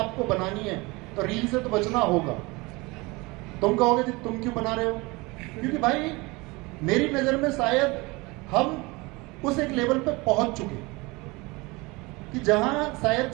बनानी है तो रील से तो बचना होगा। तुम कहोगे कि तुम क्यों बना रहे हो? क्योंकि भाई मेरी नजर में शायद हम उस एक लेवल पे पहुंच चुके कि जहां शायद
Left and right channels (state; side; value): quieter; left; 24.5 dB